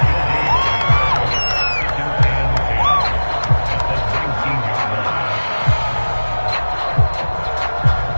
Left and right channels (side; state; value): both; inverted; correlation -1.00